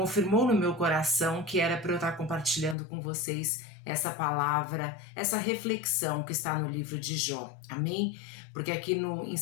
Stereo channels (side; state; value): right; drops out; at 2.8 s